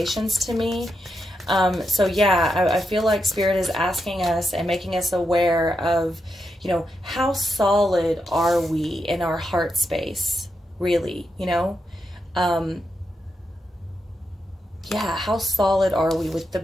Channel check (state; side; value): normal; both; correlation 0.85